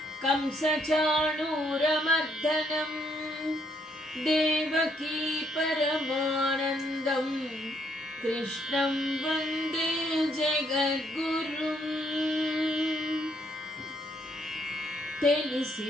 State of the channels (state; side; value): normal; both; correlation 0.71